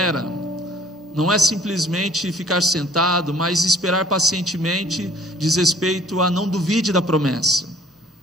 não é simplesmente ficar sentado, mas esperar pacientemente diz respeito a não duvide da promessa.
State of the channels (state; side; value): normal; both; correlation 0.53